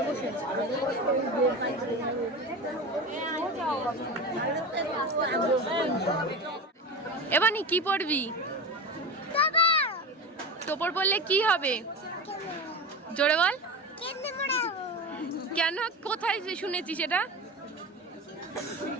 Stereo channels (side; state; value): both; normal; correlation 0.26